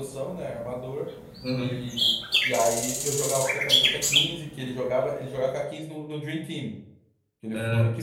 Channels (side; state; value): both; identical; correlation 1.00